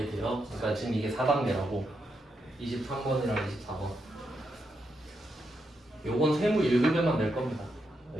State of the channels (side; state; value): both; normal; correlation 0.83